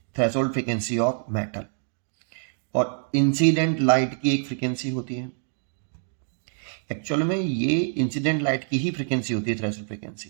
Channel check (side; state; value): left; silent; 61 dB below the other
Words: थ्रेशोल्ड फ्रीक्वेंसी ऑफ मेटल, और इंसिडेंट लाइट की एक फ्रीक्वेंसी होती है. एक्चुअल में ये इंसिडेंट लाइट की ही फ्रीक्वेंसी होती है थ्रेशोल्ड